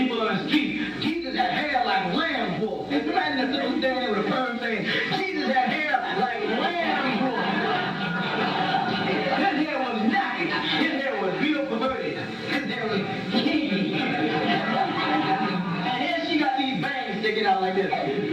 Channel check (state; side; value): identical; both; correlation 1.00